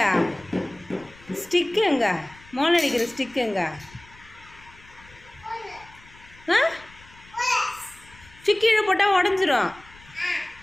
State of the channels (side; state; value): left; noise; rumble, 24 dB below the sound